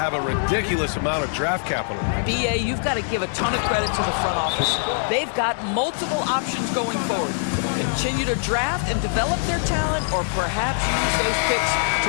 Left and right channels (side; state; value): right; silent; digital silence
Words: a ridiculous amount of draft capital. BA, you've got to give a ton of credit to the front office. They've got multiple options going forward. Continue to draft and develop their talent, or perhaps use those picks